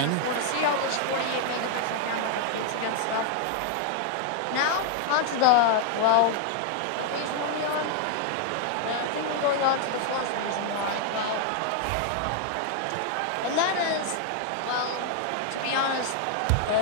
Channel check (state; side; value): different; both; correlation 0.00